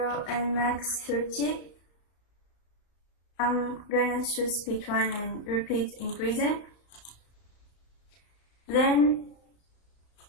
and max 30. I'm gonna choose speed 1 and repeat increasing. Then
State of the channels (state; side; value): late; right; 34 ms